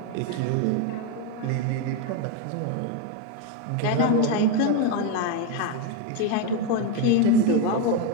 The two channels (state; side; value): different; both; correlation 0.02